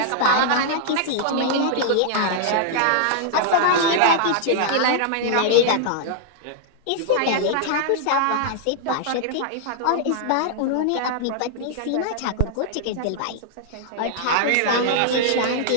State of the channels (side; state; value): both; different; correlation -0.01